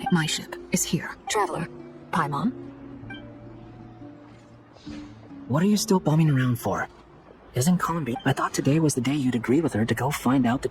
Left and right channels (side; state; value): both; identical; correlation 1.00